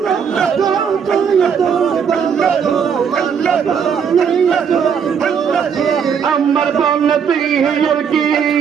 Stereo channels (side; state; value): left; quieter; 7.1 dB